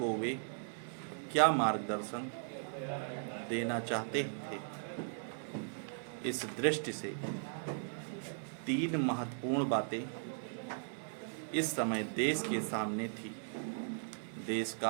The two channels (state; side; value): silent; left; 53 dB below the other